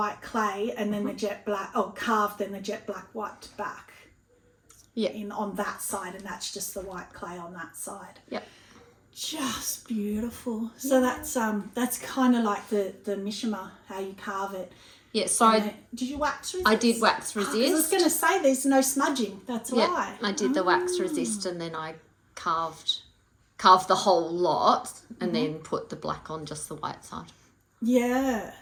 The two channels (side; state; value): both; identical; correlation 1.00